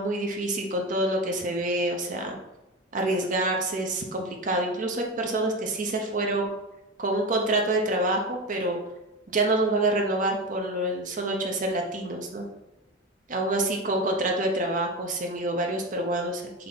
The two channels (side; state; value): both; normal; correlation 0.21